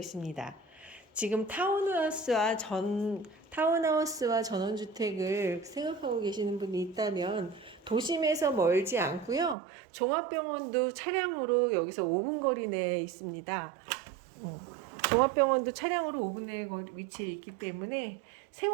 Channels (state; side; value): drops out; left; at 9.6 s